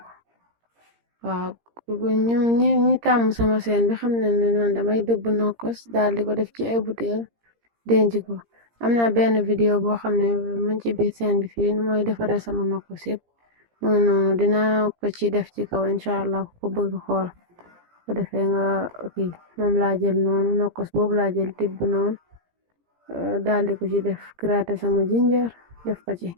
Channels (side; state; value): left; late; 17 ms